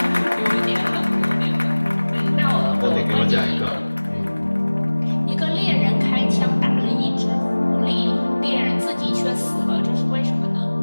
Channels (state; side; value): inverted; both; correlation -1.00